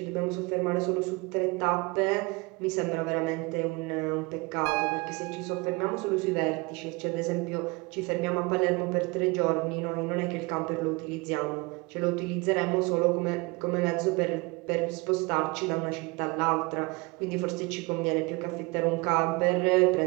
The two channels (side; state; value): left; quieter; 26.3 dB